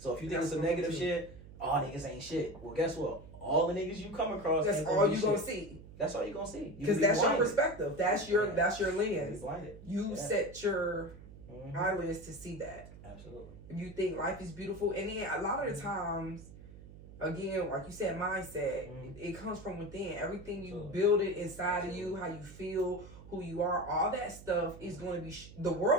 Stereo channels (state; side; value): noise; right; hum, 17 dB below the sound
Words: if you think it's a negative shit, all niggas ain't shit. Well, guess what? All the niggas you come across, that's all you gonna see. That's all you gonna see. Because that's your perspective. That's your lens. You set your eyelids to see that. Absolutely. You think life is beautiful, and then a lot of the times, again, like you said, mindset. It comes from within. Everything you build it inside of you, how you feel, who you are, all that stuff is going to be. The